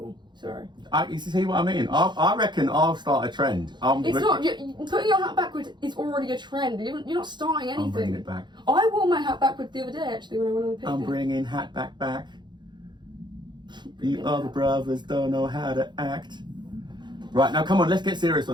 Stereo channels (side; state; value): left; late; 0.22 ms